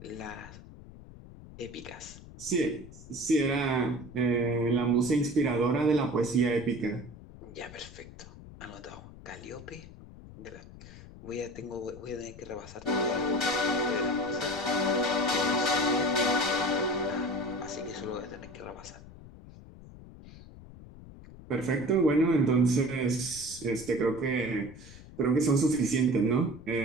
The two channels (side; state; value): left; noise; rumble, 17 dB below the sound